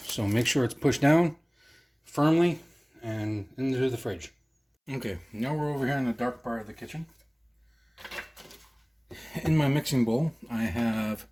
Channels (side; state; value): both; identical; correlation 1.00